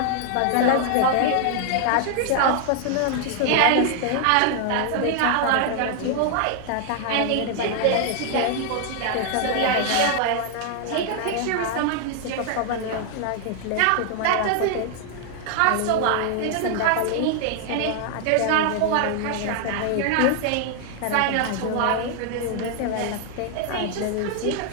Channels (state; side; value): different; both; correlation 0.00